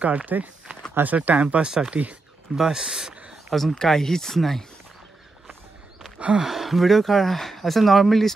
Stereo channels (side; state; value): left; quieter; 3.4 dB